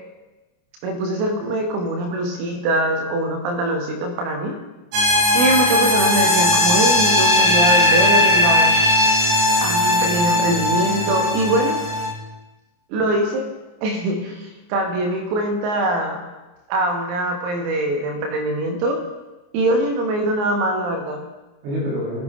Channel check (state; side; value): late; left; 29 ms